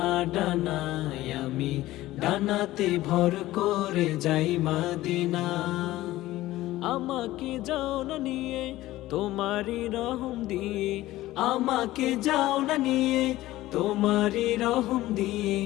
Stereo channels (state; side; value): quieter; right; 16.5 dB